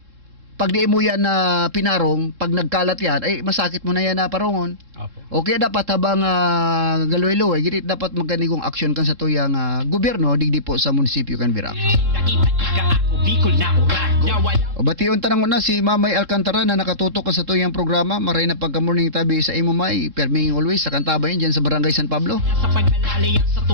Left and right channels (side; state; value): left; late; 3.7 ms